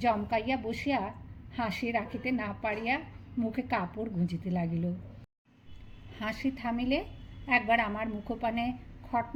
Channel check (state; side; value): identical; both; correlation 1.00